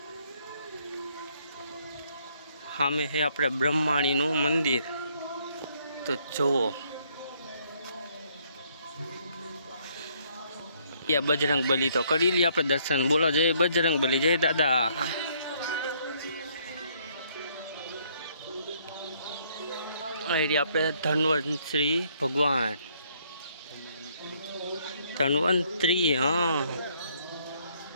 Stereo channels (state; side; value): inverted; both; correlation -0.67